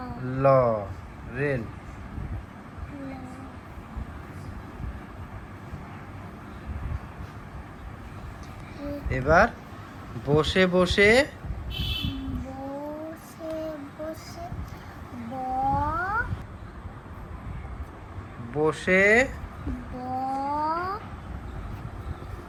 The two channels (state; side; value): identical; both; correlation 1.00